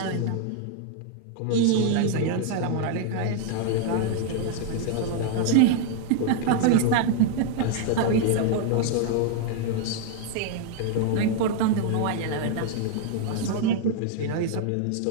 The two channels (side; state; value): both; different; correlation 0.00